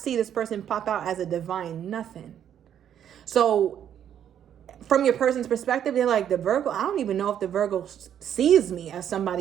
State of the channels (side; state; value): left; quieter; 9.7 dB